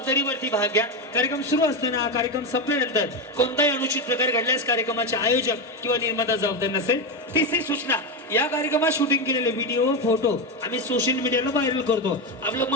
भाग घ्या. कार्यक्रम सुरू असताना कार्यक्रम संपल्यानंतर कोणताही अनुचित प्रकार घडल्यास कार्यक्रमाचे आयोजक किंवा निर्माता जबाबदार नसेल. तिसरी सूचना, या कार्यक्रमात शूटिंग केलेले व्हिडिओ फोटो आम्ही सोशल मीडियाला व्हायरल करतो. आपलं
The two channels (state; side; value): normal; both; correlation 0.12